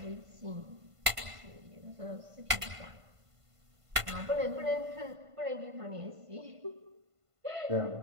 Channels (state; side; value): late; left; 1.5 ms